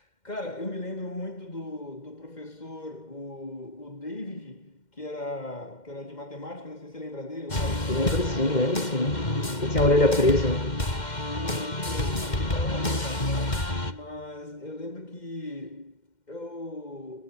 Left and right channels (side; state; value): right; late; 2.1 ms